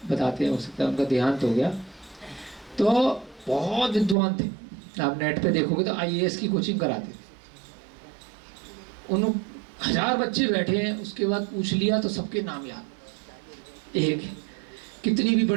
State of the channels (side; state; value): left; drops out; at 4.2 s